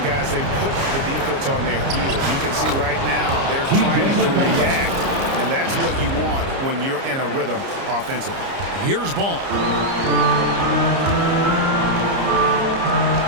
guys, they put the defense on their heels. You can see right now they're trying to react. And that's what you want when you're in a rhythm offensively. Here's Ball.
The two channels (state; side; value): late; left; 30 ms